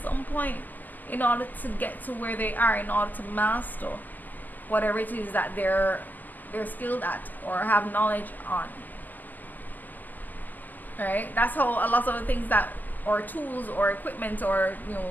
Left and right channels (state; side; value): late; right; 0.084 ms